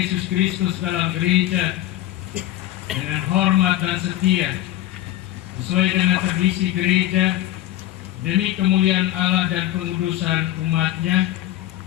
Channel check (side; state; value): right; quieter; 14.2 dB